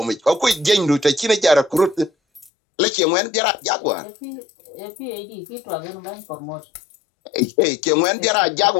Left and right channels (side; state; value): right; drops out; at 2.5 s